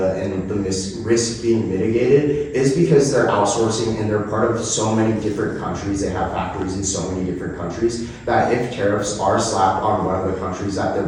and the risk being mitigated is because they're outsourcing and they're part of so many different countries. They have factories in so many different countries that if tariffs are slapped on one of the countries that they're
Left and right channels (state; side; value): identical; both; correlation 1.00